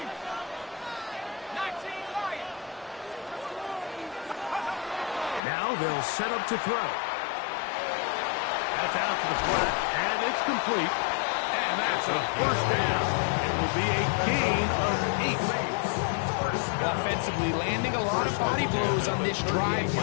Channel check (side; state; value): right; drops out; at 5.4 s